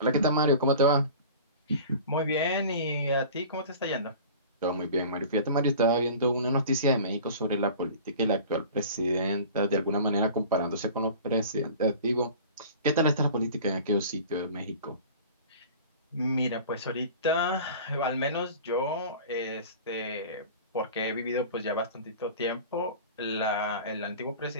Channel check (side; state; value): both; inverted; correlation -0.40